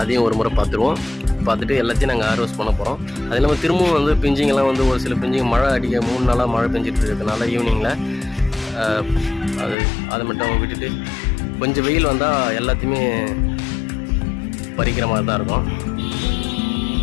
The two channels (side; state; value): right; drops out; at 9.8 s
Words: அதையும் ஒரு முறை பார்த்துருவோம். பார்த்துட்டு எல்லாத்தையும் நாங்கள் ஹார்வெஸ்ட் பண்ண போகிறோம். அது இல்லாமல் திரும்பவும் வந்து பிஞ்சிங்கெல்லாம் வந்து ஒரு சில பிஞ்சிங்க மழை அடிக்க 3 நாளாக மழை பெஞ்சிட்டு இருக்கிறதுனால ஈவினிங்கில் அதை மட்டும் விட்டுட்டு கொஞ்சம் வெயில் வந்தால் எல்லாத்தையுமே பறிக்கிற மாதிரி தான் இருக்கும்.